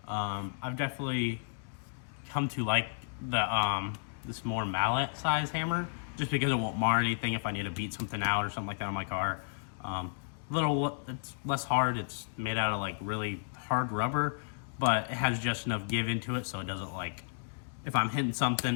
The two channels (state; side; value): silent; right; digital silence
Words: I've definitely come to like the this more mallet size hammer, just because it won't mar anything if I need to beat something out or something like that on my car. It's less hard. It's made out of like really hard rubber, but it has just enough give into it so it doesn't, like, if I'm hitting